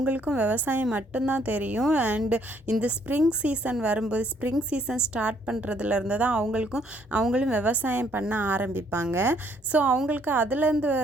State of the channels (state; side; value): normal; both; correlation 0.66